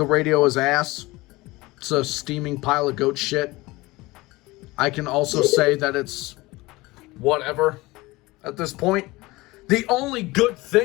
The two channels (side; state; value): right; quieter; 21.0 dB